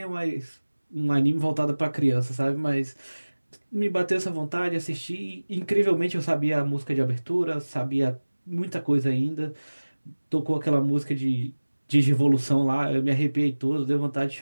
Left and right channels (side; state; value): both; inverted; correlation -1.00